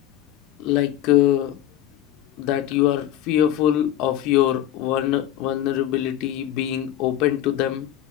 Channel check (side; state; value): right; quieter; 12.2 dB